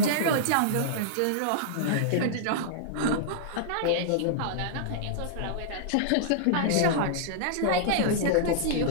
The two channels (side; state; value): both; different; correlation -0.02